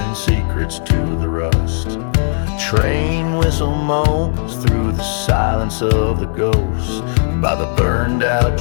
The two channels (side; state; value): right; silent; 58 dB below the other